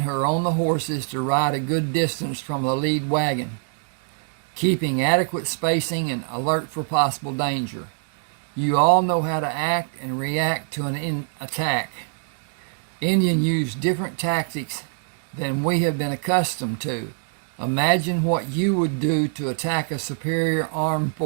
who are on the horses to ride a good distance from the lead wagon, keeping adequate spacing and alert for possible danger. You all know how to act and react to an attack. Indians use different tactics than we have been accustomed to. Imagine what you would do to attack a superior armed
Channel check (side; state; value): left; silent; 63 dB below the other